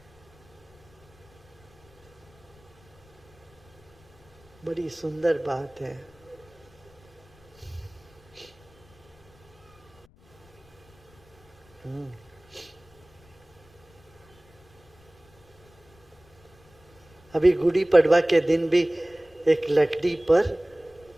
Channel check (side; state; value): left; noise; rumble, 28 dB below the sound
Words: बड़ी सुंदर बात है। अभी गुड़ी पड़वा के दिन भी एक लकड़ी पर